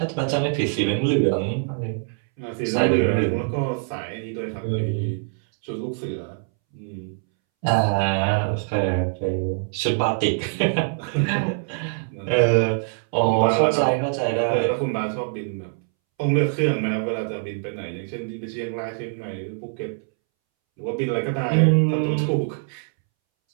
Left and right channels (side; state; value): left; silent; 63 dB below the other